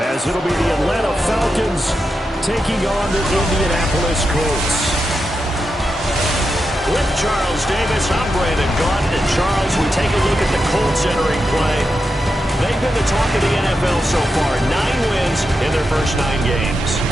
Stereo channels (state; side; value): normal; both; correlation 0.87